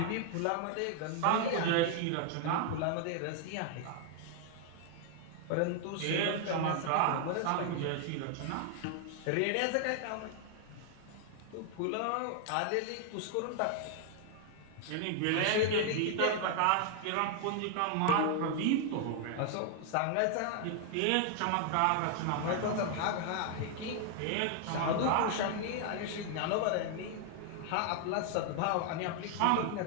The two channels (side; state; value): both; different; correlation 0.00